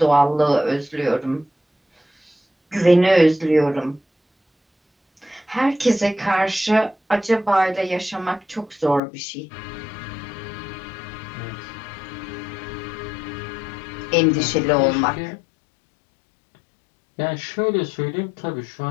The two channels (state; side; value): drops out; right; at 9.0 s